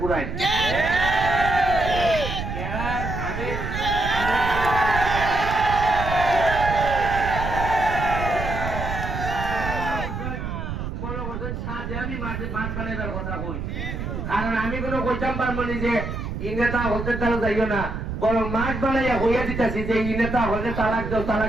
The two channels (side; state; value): right; noise; rumble, 5 dB below the sound